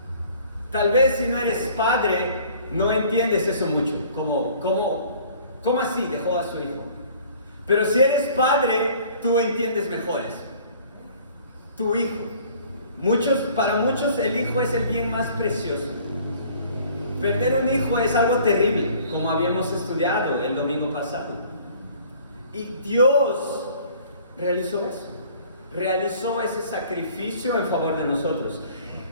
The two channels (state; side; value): inverted; both; correlation -0.52